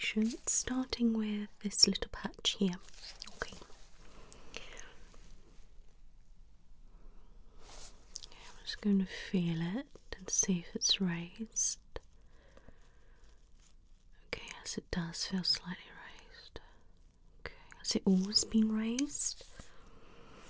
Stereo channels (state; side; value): identical; both; correlation 1.00